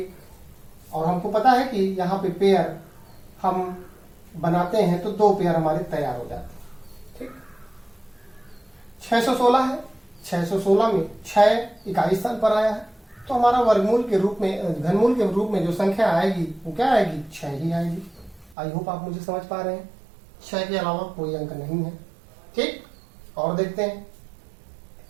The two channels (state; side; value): drops out; left; at 18.6 s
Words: और हमको पता है कि यहाँ पे पेयर हम बनाते हैं तो 2 पेयर हमारे तैयार हो जाते हैं। ठीक, 616 है, 616 में 6 इकाई स्थान पर आया है, तो हमारा वर्गमूल के रूप में, घनमूल के रूप में जो संख्या आएगी वो क्या आएगी? 6 ही आएगी। आई होप आप मुझे समझ पा रहे हैं। 6 के अलावा कोई अंक नहीं है। ठीक, और देखते हैं।